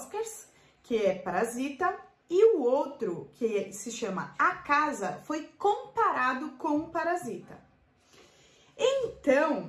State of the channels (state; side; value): identical; both; correlation 1.00